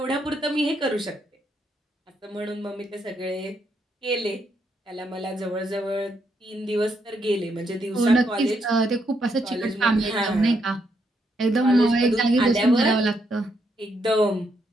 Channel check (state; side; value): normal; both; correlation 0.77